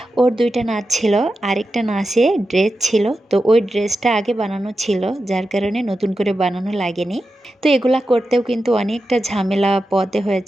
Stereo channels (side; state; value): both; normal; correlation 0.91